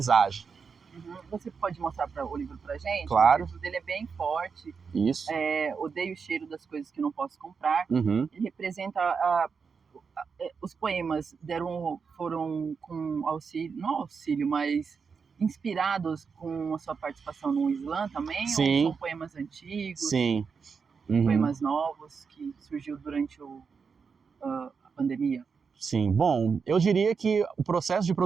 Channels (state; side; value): quieter; left; 5.6 dB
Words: Você pode mostrar o livro pra gente? Claro. O livro dele é bem forte. Isso. Odeio o cheiro das coisas que não posso comprar. Uhum. Ele representa os poemas foram com auxílio, não auxílio, mas inspirados com a sua participação no Slam também? Sim. Ou são poemas antigos? Sim. Uhum. Poemas novos que surgiu durante a pandemia? Sim, bom, eu diria que o processo de